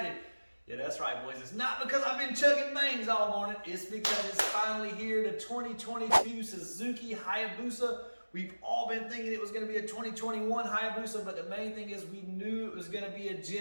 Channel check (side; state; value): both; inverted; correlation -1.00